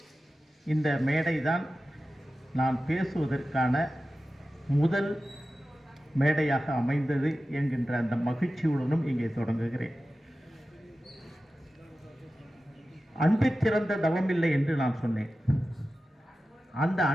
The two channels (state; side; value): normal; both; correlation 0.94